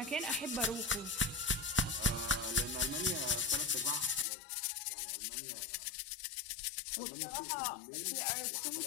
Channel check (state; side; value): drops out; right; at 4.2 s